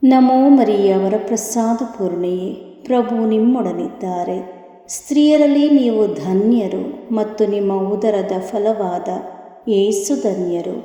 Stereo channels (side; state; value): both; identical; correlation 1.00